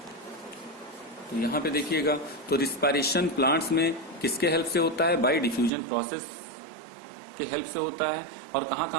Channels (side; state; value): left; drops out; at 5.7 s